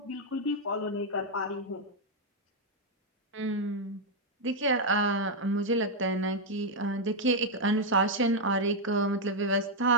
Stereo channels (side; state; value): both; normal; correlation -0.01